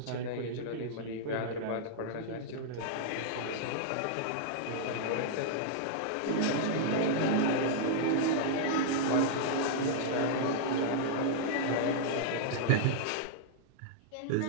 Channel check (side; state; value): both; different; correlation -0.02